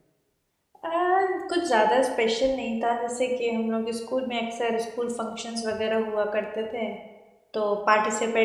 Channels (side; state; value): both; identical; correlation 1.00